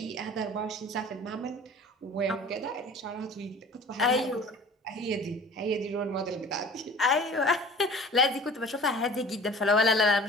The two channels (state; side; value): normal; both; correlation 0.44